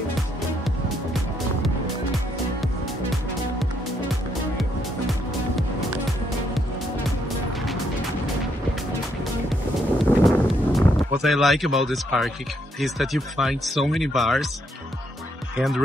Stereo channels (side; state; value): both; normal; correlation 0.74